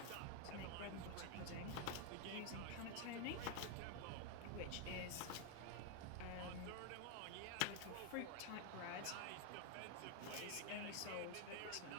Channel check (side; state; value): both; different; correlation 0.01